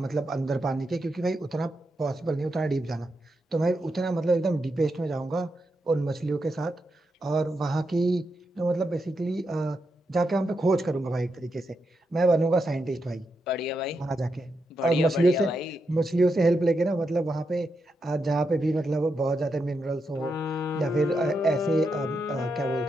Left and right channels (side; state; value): both; normal; correlation 0.85